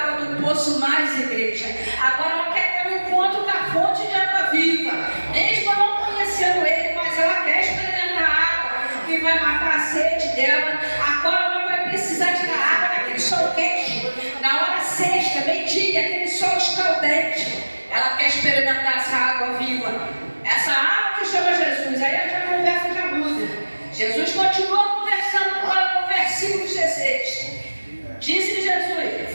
do poço mais, igreja. Agora ela quer ter um encontro com a fonte de água viva. Mesmo não conhecendo Ele, mas ela quer experimentar a água que vai matar a sede dela. Agora ela vai precisar precisar tirar água naquele sol quente, na hora sexta, meio-dia, aquele sol escaldante, ela quer experimentar essa água viva, essa água que chama Jesus. Aí a conversa já muda. Jesus continua conversando com o versículo 16. Disse-lhe Jesus:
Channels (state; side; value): inverted; both; correlation -1.00